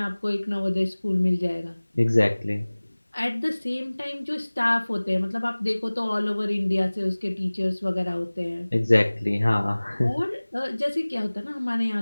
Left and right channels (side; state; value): both; inverted; correlation -1.00